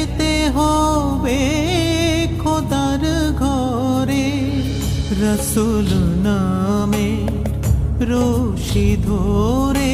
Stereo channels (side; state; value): both; identical; correlation 1.00